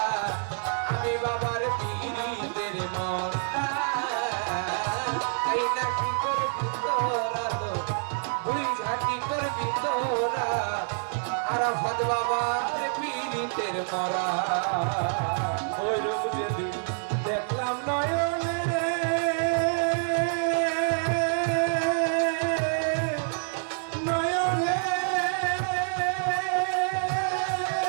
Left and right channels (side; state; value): left; silent; digital silence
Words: আমি বাবার পীড়িতের মাওলা তাই না কি করবি তোরা বুড়ি ঝাঁকি করবি তোরা আর ভাত বাবার পীড়িতের মরা ওই রূপ যদি দেখলাম নয়নে নয়নে